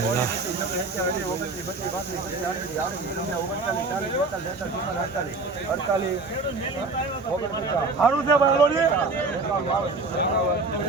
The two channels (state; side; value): quieter; left; 3.6 dB